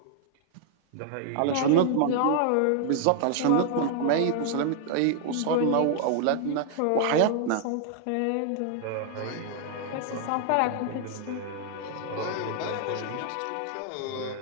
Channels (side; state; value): both; different; correlation 0.00